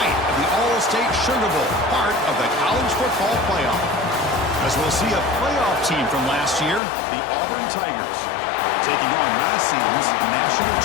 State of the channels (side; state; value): right; drops out; at 6.8 s